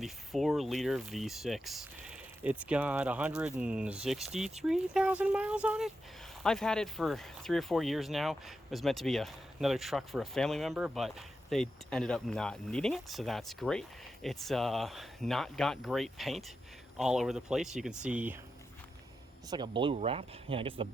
the 4-liter V6. It's got 163,000 miles on it. I've had it for 3 or 4 years now. It was meant to be another truck for a family member, but they ended up not needing it, so that's great. It's not got great paint all over the place. You can see it's like a blue wrap. Yeah, I guess the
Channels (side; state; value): both; normal; correlation 0.88